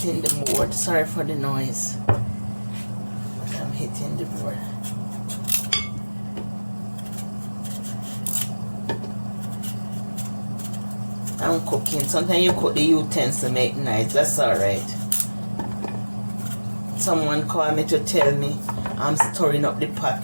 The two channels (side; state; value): both; inverted; correlation -1.00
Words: the board. Sorry for the noise. But I'm hitting the board. I'm cooking. Sometimes you cook the utensils to make nice. That's alright. Someone called me to tell me I'm stirring up the pot